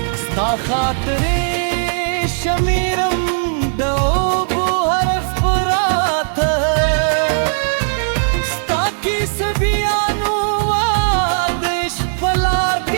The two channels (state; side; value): silent; left; digital silence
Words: sta khatre shamiram dobu harf parat sta ki sabianu wadish palar